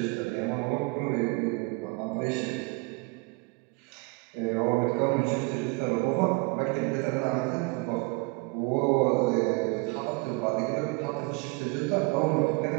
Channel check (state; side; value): quieter; left; 27.1 dB